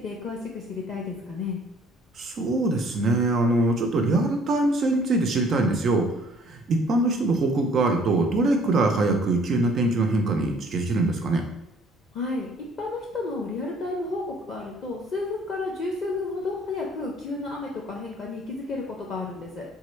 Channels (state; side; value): normal; both; correlation 0.58